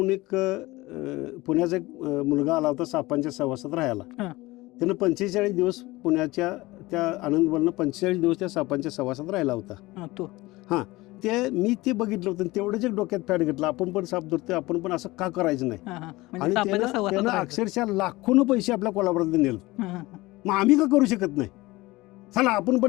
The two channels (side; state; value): right; quieter; 20.4 dB